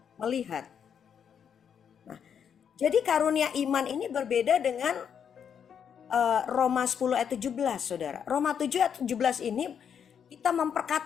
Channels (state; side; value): quieter; right; 7.8 dB